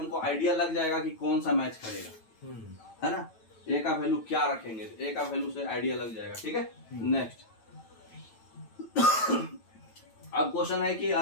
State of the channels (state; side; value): late; right; 9.1 ms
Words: आइडिया लग जाएगा कि कौन सा मैच करेगा, है ना। A का वैल्यू क्या रखेंगे, तो A का वैल्यू से आइडिया लग जाएगा, ठीक है। नेक्स्ट अब क्वेश्चन है कि